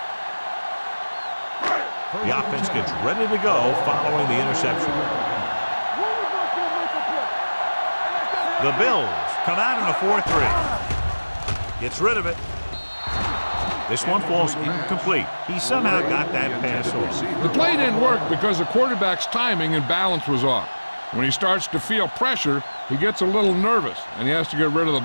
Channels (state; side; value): inverted; both; correlation -1.00